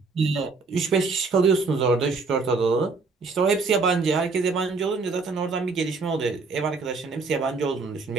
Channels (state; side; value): quieter; left; 4.2 dB